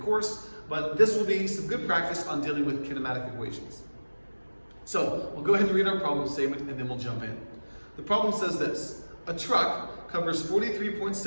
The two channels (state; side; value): inverted; both; correlation -1.00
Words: but this will be some good practice on dealing with kinematic equations. So, we'll go ahead and read our problem statement and then we'll jump in. The problem says this: a truck covers